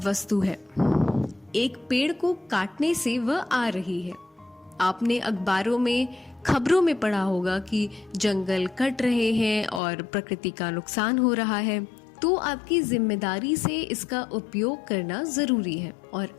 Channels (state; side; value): drops out; right; at 9.8 s